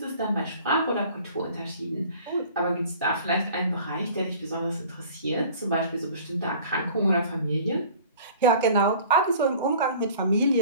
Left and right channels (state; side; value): inverted; both; correlation -0.48